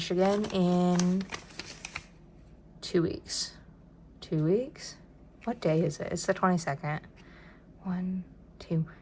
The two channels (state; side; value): identical; both; correlation 1.00